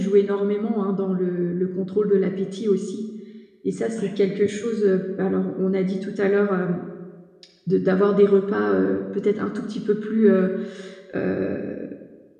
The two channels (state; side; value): identical; both; correlation 1.00